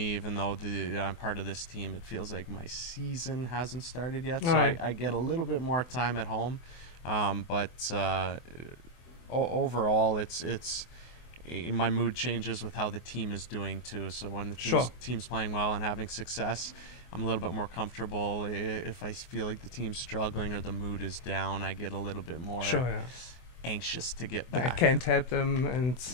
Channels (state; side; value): late; right; 24 ms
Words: even though I'm part of this team, it feels like my season hasn't started yet. So I get a little bit more time at home. But overall, it's my mood changes with how the team is doing too. So when the team's playing well and having success, I'm a little bit more comfortable. If I feel like the team's struggling or the mood is down, I get a little bit more anxious to get back. I can't help them and